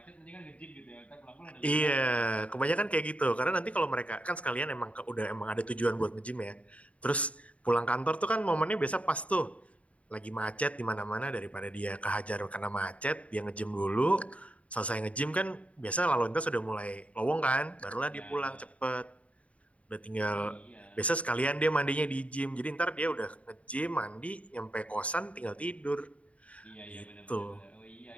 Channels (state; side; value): late; right; 0.065 ms